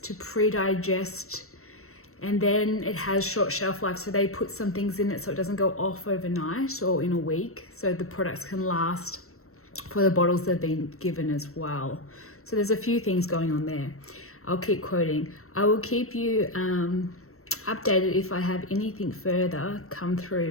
pre-digest, and then it has short shelf life. So they put some things in it so it doesn't go off overnight or in a week. So the products can last for the bottles they've been given as well. So there's a few things going on there. I'll keep quoting. I will keep you updated if I have anything further come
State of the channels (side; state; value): right; late; 0.63 ms